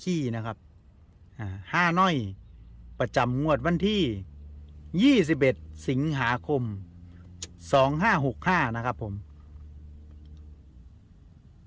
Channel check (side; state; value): both; identical; correlation 1.00